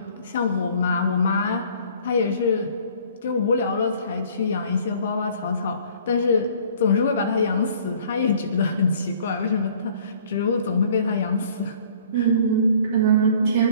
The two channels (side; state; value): both; inverted; correlation -0.54